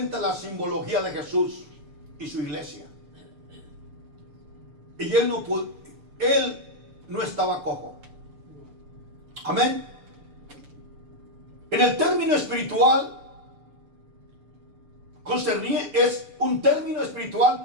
la simbología de Jesús y su iglesia. Y él no estaba cojo. Amén. En el término espiritual, es un término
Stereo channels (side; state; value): left; late; 6.8 ms